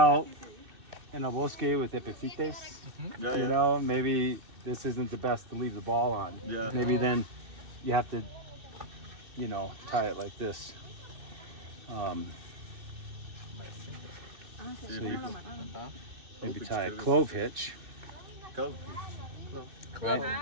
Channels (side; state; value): left; late; 2.6 ms